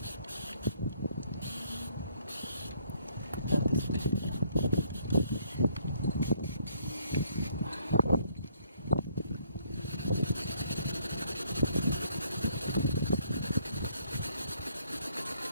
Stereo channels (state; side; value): inverted; both; correlation -0.66